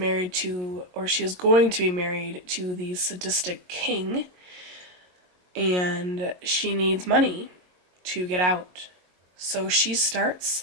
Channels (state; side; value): late; left; 22 ms